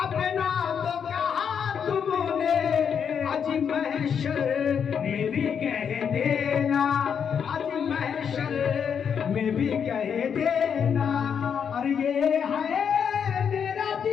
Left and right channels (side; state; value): right; quieter; 7.4 dB